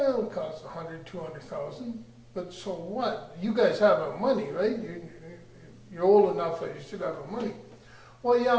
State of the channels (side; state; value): both; identical; correlation 1.00